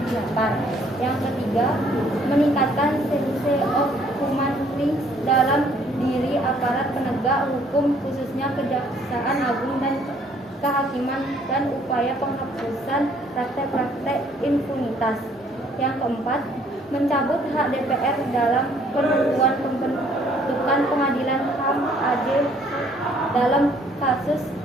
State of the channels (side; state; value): both; normal; correlation 0.62